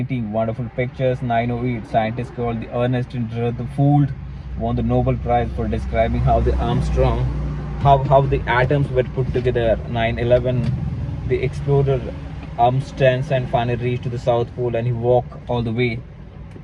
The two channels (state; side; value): identical; both; correlation 1.00